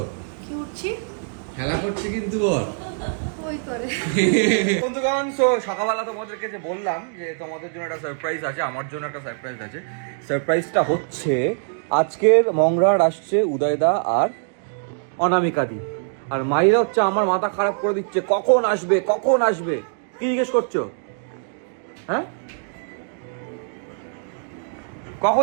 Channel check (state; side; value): silent; left; digital silence